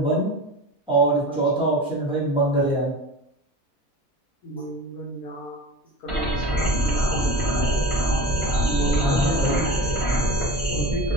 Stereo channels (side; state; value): both; normal; correlation 0.32